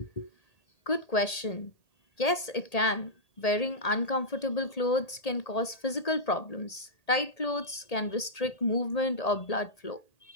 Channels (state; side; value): late; right; 1.8 ms